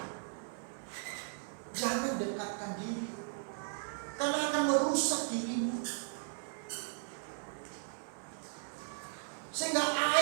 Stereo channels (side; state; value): left; silent; 53 dB below the other